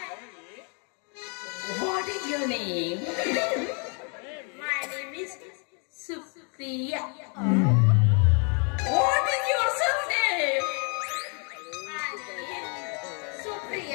what is your name? My name is Supriya. What is your surname? My name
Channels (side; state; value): right; quieter; 37.9 dB